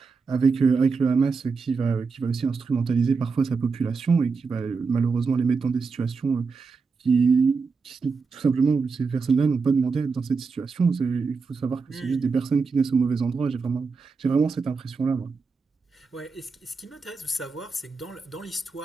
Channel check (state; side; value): quieter; left; 4.8 dB